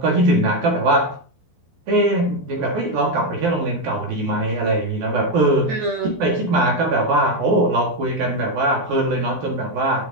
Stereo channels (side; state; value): left; late; 12 ms